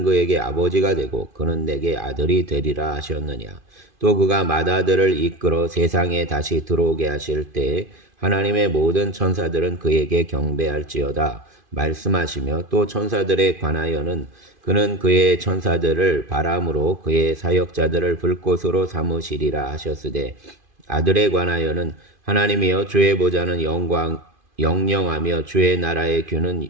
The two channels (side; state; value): left; late; 2.5 ms